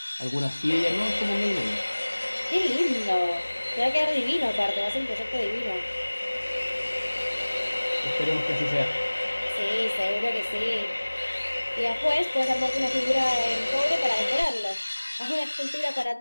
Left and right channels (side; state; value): both; inverted; correlation -1.00